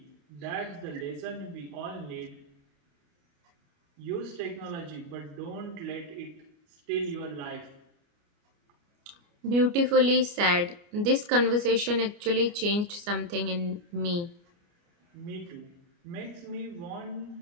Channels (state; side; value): late; left; 29 ms